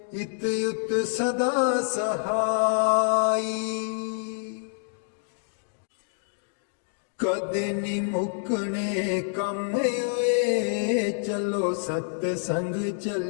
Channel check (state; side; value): silent; right; digital silence